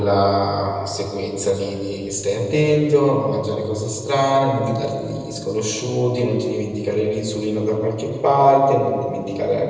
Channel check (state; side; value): identical; both; correlation 1.00